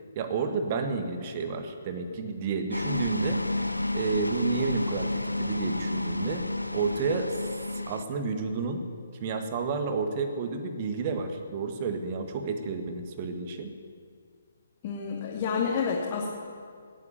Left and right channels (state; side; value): inverted; both; correlation -0.64